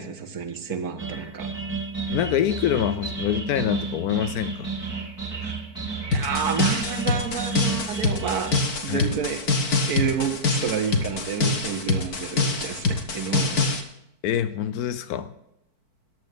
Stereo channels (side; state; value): right; late; 4.5 ms